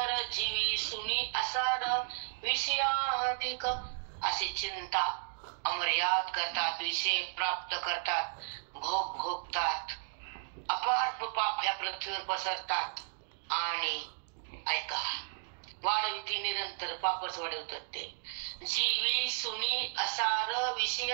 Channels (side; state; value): left; silent; digital silence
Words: जीवी सुनी असार, विषयाधिक. अशी चिंता अमर्याद करतात, विषय प्राप्त करतात, भोग भोगतात, अपार पाप ह्या पृथ्वीवर पसरतात. आणि ऐका, वाढविती निरंतर, पापच वाढवतात ते. जीवी सुनी असार,